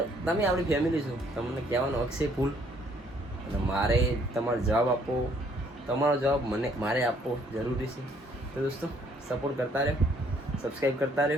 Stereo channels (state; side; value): normal; both; correlation 0.65